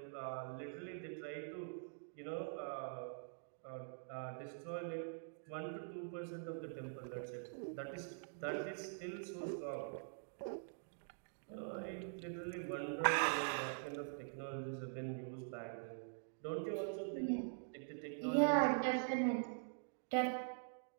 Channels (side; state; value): left; silent; digital silence